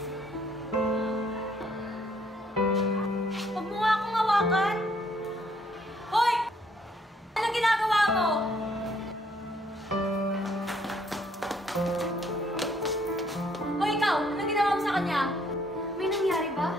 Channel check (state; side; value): normal; both; correlation 0.67